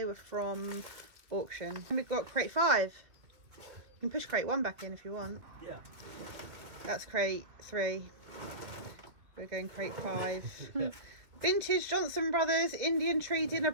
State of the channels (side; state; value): left; late; 2.4 ms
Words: were from auction. And we've got crate 5. You can push crate 1 back in if you want. Yeah. That's crate 3. We're going crate 5. Vintage Johnson Brothers Indian Tree dinner